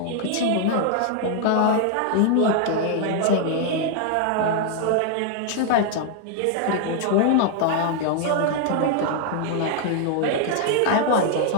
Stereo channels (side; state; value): both; different; correlation 0.00